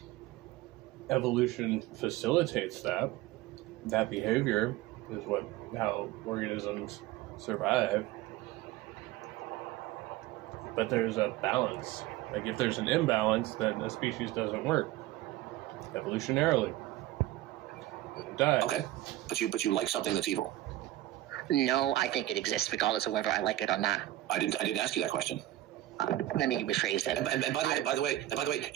evolution facilitates that. That behavior is how organisms survive. But there's a balance. Like, if there's an imbalance, then a species doesn't work. Evolutionarily. It dies. Okay. But you like something that's evil. No, I think it exists regardless of whether I like it or not. I didn't ask you that question. Let me rephrase that. And by the way,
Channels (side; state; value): left; quieter; 15.5 dB